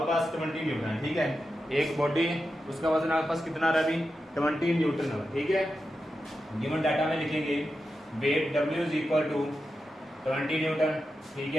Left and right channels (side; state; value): both; normal; correlation 0.90